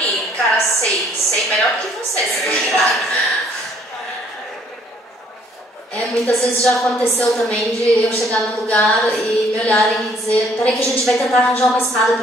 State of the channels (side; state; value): both; normal; correlation 0.63